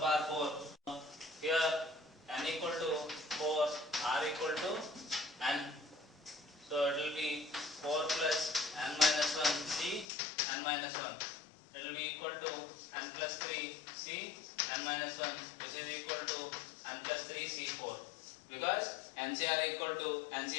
power 4. Here n equal to 4, r equal to n. So it will be 4 plus n minus 1 c n minus 1. It will be equal to n plus 3 c n minus 1, which is equal to n plus 3 c4, because nc are equal to nc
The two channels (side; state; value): right; drops out; at 10.1 s